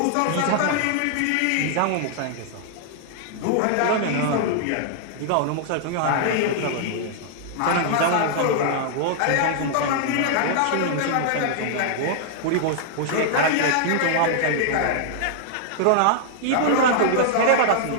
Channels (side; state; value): both; different; correlation -0.01